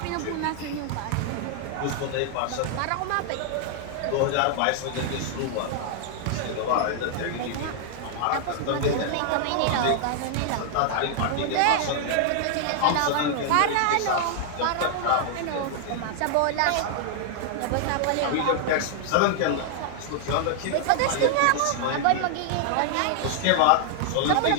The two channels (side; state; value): both; different; correlation 0.00